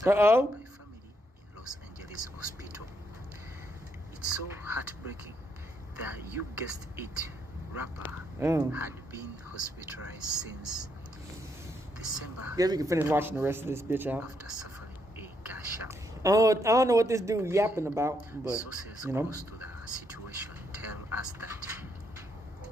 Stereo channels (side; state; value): both; normal; correlation 0.76